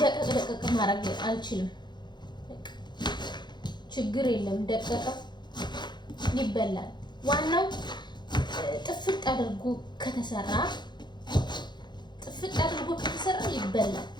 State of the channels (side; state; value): right; late; 0.21 ms